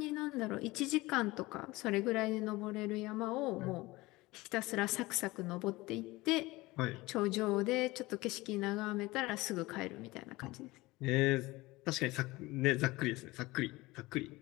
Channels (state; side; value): quieter; right; 20.7 dB